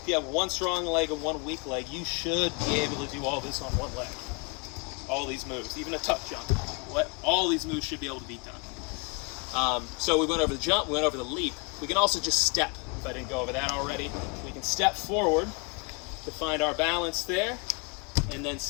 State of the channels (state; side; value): quieter; right; 32.1 dB